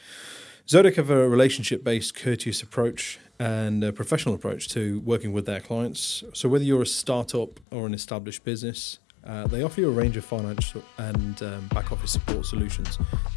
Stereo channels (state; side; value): drops out; right; at 7.6 s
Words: Zodec have a relationship-based, courteous approach and a professional approach to working with their clients. So whether you're a startup or an established business, they offer you a range of financial and back office support solutions